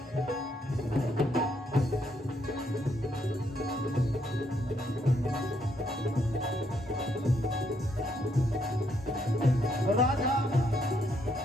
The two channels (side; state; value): both; normal; correlation 0.74